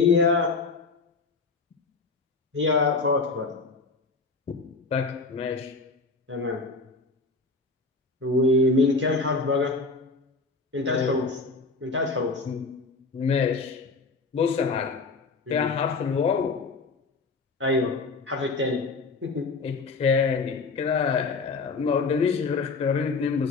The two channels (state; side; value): quieter; right; 3.9 dB